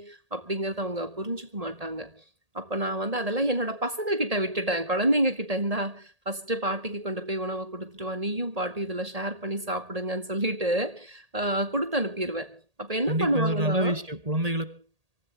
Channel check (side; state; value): left; late; 1.8 ms